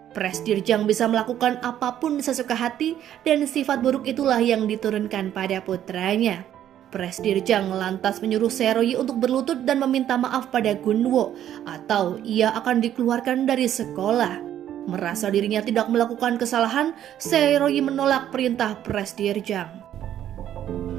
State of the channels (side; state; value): left; quieter; 11.1 dB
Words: Presdirjang bisa melakukan apapun sesuka hati dan sifat buruk itulah yang diturunkan pada putranya. Presdirjang lantas menyuruh Seroyi untuk berlutut dan meminta maaf pada Gunwo atau ia akan dikeluarkan dari sekolah. Merasa dirinya tidak melakukan kesalahan, Seroyi menolak perintah Presdirjang.